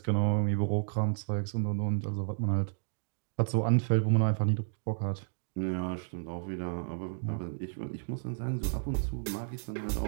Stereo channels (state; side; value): silent; left; digital silence